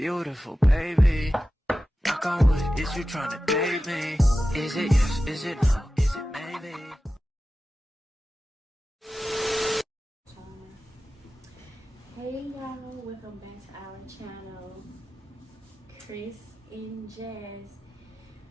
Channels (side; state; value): both; normal; correlation 0.94